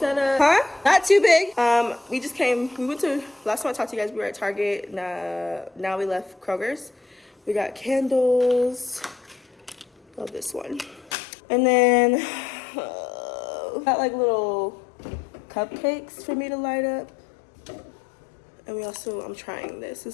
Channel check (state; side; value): drops out; right; at 11.1 s